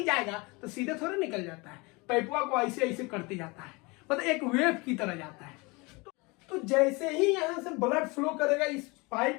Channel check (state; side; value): quieter; right; 26.4 dB